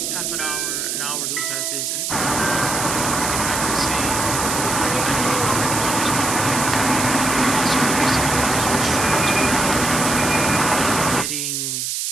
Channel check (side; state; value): right; noise; hiss, 2 dB below the sound